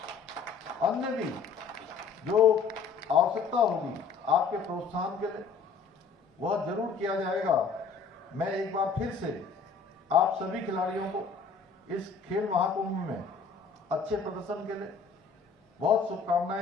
अन्य भी जो आवश्यकता होगी आपके प्रोत्साहन के लिए वह जरूर किया जाएगा। मैं एक बार फिर से आप सभी खिलाड़ियों को इस खेल महाकुंभ में अच्छे प्रदर्शन के लिए बहुत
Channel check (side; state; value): right; quieter; 5.2 dB